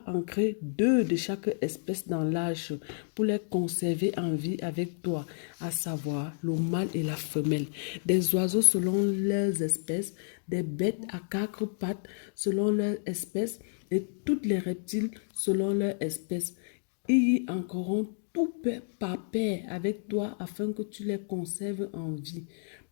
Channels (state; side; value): silent; right; digital silence